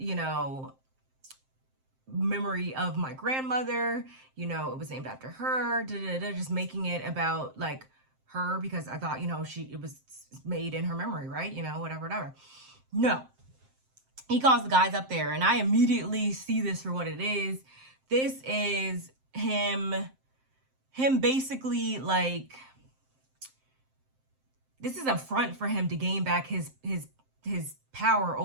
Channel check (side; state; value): left; late; 7.6 ms